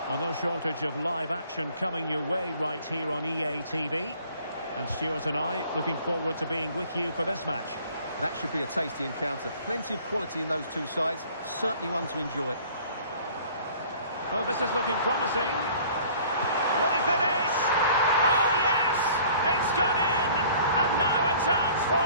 Well, no shortage of live action coming your way right here on EA TV. And Stuart and I looking forward to being with you for this match. That should be a tasty encounter. Plenty of quality in those two sides. Certainly one to enjoy. Oh, this is looking promising. Will he finish? Oh, yes! It's gone in! And now a chance for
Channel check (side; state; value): both; inverted; correlation -0.52